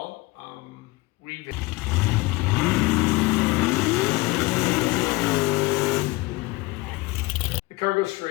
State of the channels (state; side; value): quieter; right; 22.2 dB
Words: The car goes